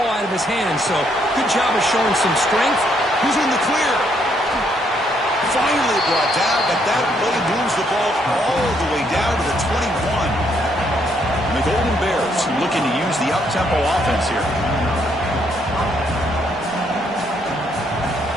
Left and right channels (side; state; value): both; normal; correlation 0.72